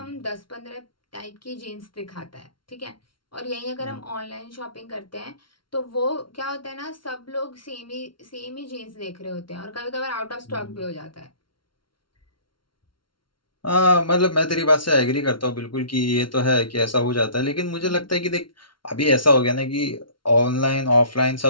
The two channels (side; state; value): right; late; 0.73 ms